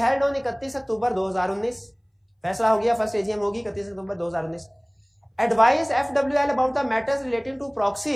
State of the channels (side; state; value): both; identical; correlation 1.00